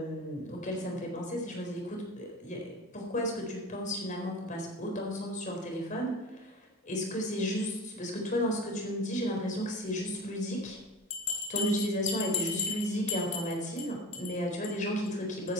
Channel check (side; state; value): both; normal; correlation 0.35